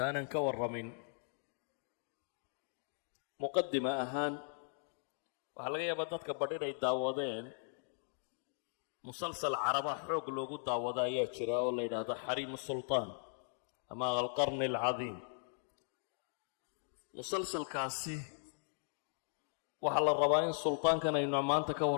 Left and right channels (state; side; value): silent; right; digital silence